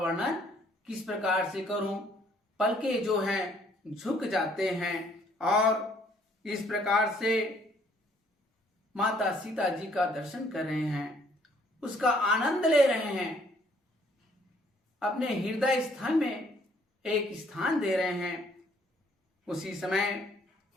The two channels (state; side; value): normal; both; correlation 0.63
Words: किस प्रकार से करूं। पलके जो हैं झुक जाते हैं और इस प्रकार से माता सीता जी का दर्शन कर रहे हैं, उसका आनंद ले रहे हैं, अपने हृदय स्थल में एक स्थान दे रहे हैं। उसी समय